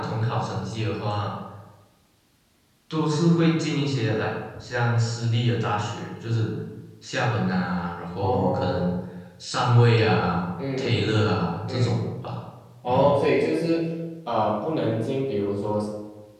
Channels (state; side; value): identical; both; correlation 1.00